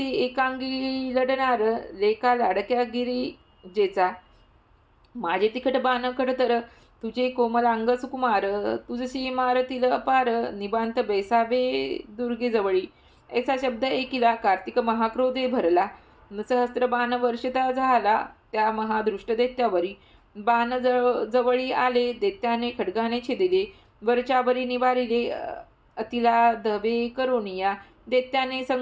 एकांगी लढणार लेका लाडक्या गिरिजेचा माझे तिखट बाण खडतर तुझे कोमलांग सुकुमार तुझशी मारतील अपार निबांत बैसावे दुर्गेजवळी ऐसा शब्द ऐकिला कार्तिक महाक्रोधे भरला सहस्त्र बाण वर्षता झाला त्या महादृष्ट दैत्यावरी बाण जवळी आले दैत्याने खड्गाने छेदिले वरच्यावरी निवारिले अतिला धवे करोनिया दैत्याने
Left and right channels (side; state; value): both; identical; correlation 1.00